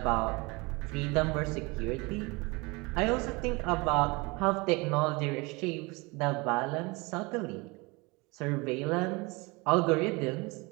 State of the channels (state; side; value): quieter; left; 26.0 dB